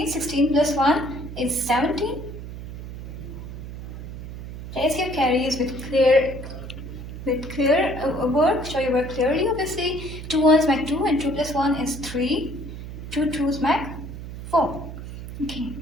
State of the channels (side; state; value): right; noise; hum, 10 dB below the sound